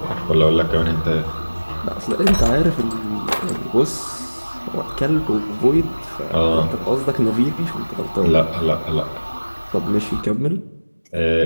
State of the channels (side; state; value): both; inverted; correlation -1.00